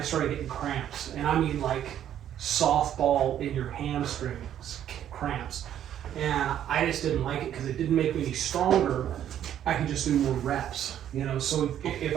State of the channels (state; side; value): quieter; left; 10.6 dB